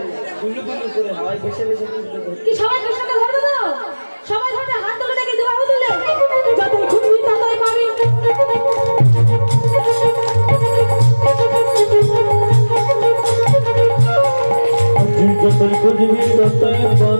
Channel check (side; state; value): both; inverted; correlation -1.00